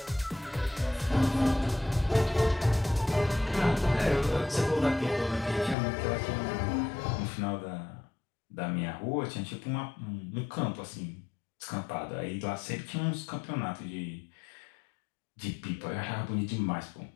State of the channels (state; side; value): drops out; right; at 5.8 s